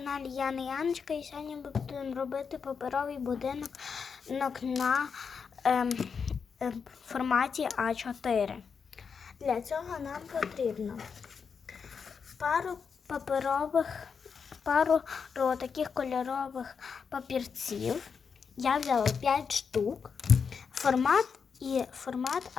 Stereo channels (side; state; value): right; quieter; 6.0 dB